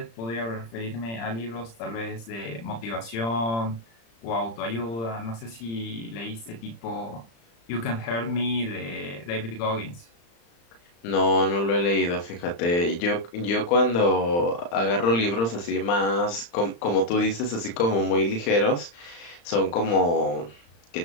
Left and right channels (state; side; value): late; right; 35 ms